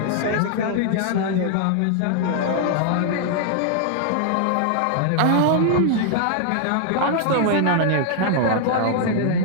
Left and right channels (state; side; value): different; both; correlation -0.01